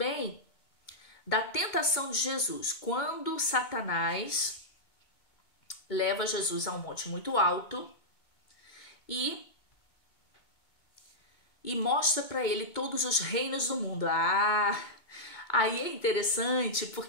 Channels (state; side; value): late; right; 2.2 ms